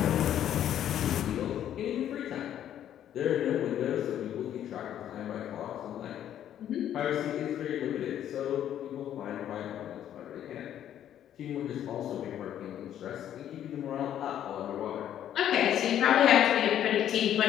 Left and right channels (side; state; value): right; quieter; 10.7 dB